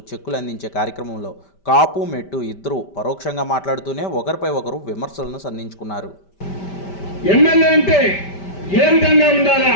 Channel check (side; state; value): right; late; 5.1 ms